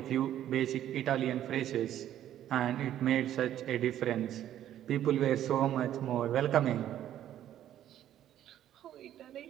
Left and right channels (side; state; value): left; quieter; 11.6 dB